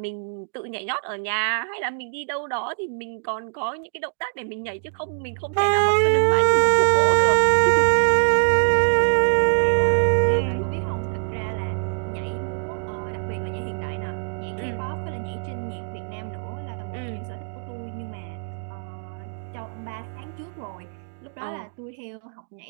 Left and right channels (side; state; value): left; silent; digital silence